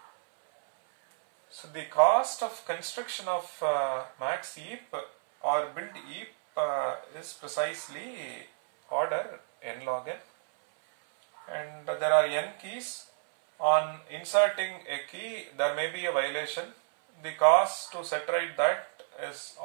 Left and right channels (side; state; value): left; silent; 57 dB below the other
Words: So the cost of construction of max heap or build heap is precisely order n log n, and there are n keys. On inserting a key there may be a violation. The cost to set right that is